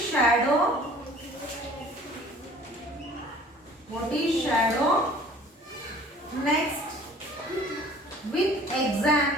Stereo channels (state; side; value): normal; both; correlation 0.50